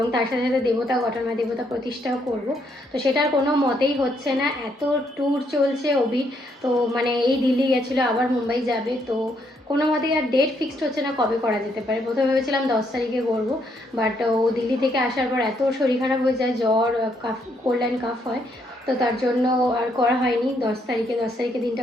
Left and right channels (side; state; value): both; normal; correlation 0.73